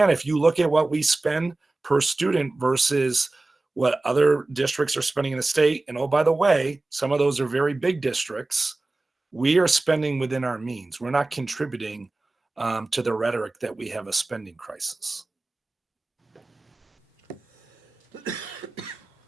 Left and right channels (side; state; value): left; quieter; 3.1 dB